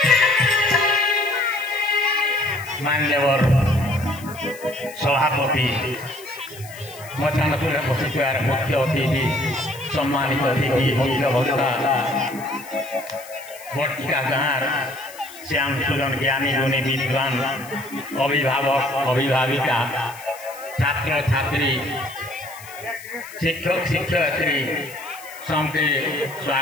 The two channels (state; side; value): noise; left; hiss, 18 dB below the sound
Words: मान्यवर सभापति मचानपुर बसिथार मुख्य अतिथि सम्मानित अतिथि मुख्य वक्ता बर्तिका गाँव श्याम सुदन ज्ञानी गुणी विद्वान अभिभावक अभिभाविका छात्र छात्री शिक्षक शिक्षयित्री सबके